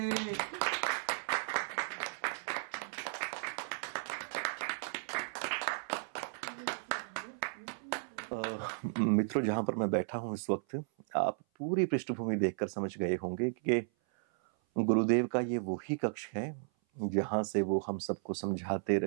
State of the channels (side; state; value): left; silent; 54 dB below the other